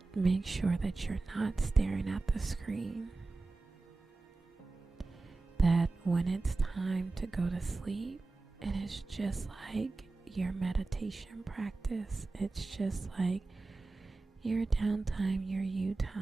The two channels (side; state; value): left; quieter; 3.5 dB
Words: make sure that you're not staring at the screen. That when it's time to go to sleep, it is just like your meditation practice. It's just like your downtime, your you